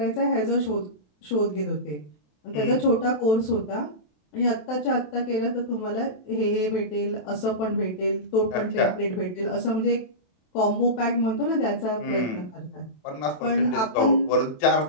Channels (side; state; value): right; late; 27 ms